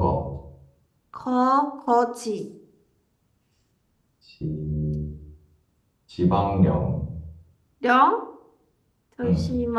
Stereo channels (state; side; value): identical; both; correlation 1.00